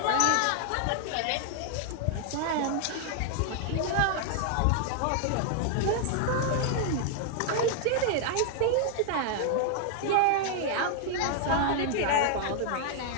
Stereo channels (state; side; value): different; both; correlation 0.00